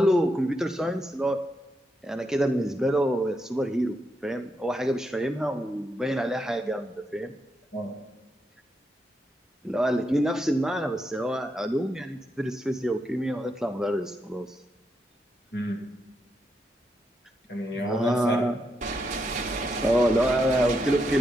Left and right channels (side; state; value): both; normal; correlation 0.82